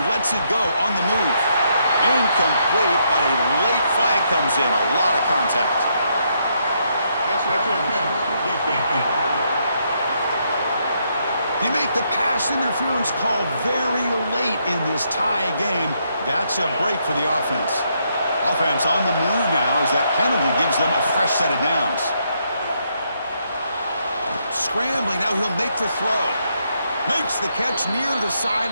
lets it go on the move. Incomplete, but a late flag comes in. A lot of contact. They make the pass interference call very late in this tie game. That's a break for the offense. Offense on the move now as that penalty gives them a fresh set of downs. Scrambling, now he'll make the throw. Makes the catch near the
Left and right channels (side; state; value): both; inverted; correlation -0.76